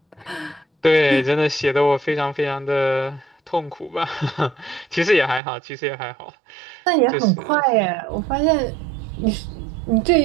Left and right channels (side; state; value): left; drops out; at 5.4 s